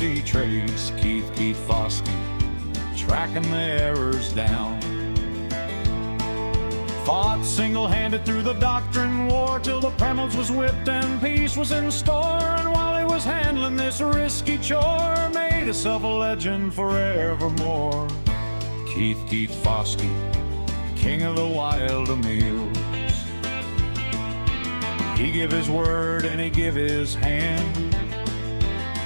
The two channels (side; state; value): both; inverted; correlation -1.00